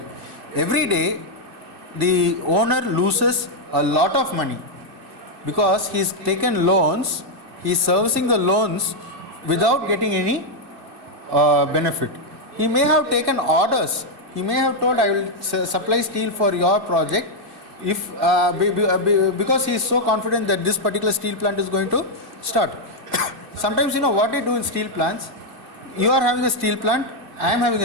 every day the owner loses a lot of money because he's taken loans, he's servicing the loans without getting any benefit. He may have taken orders, he may have told I will supply steel for your project if because he is so confident that this particular steel plant is going to start. Sometimes what they do in steel plants, you are having a steel plant, I am having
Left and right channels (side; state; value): left; late; 2.6 ms